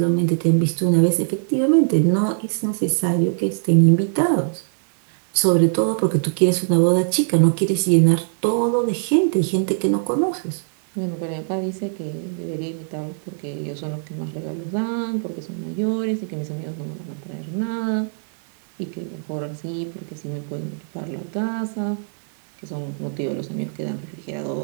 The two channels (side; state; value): left; silent; 64 dB below the other